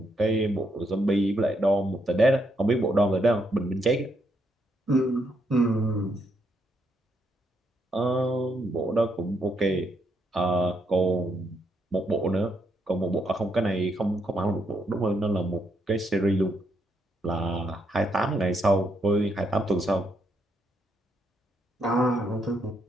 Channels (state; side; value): normal; both; correlation 0.77